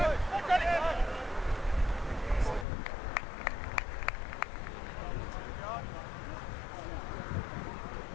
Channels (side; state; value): right; drops out; at 2.7 s